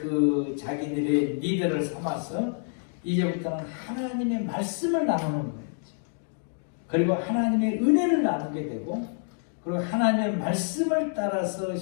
자기들의 리더를 삼아서 이제부터는 하나님의 말씀을 나누는 거예요. 그리고 하나님의 은혜를 나누게 되고, 그리고 하나님의 말씀을 따라서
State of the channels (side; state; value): right; silent; 60 dB below the other